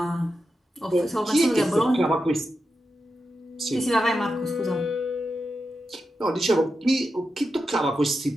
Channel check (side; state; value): both; normal; correlation 0.89